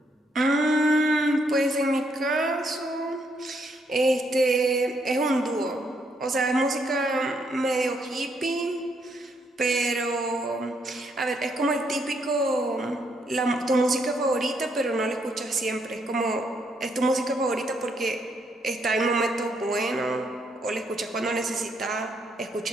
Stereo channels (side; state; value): both; normal; correlation 0.74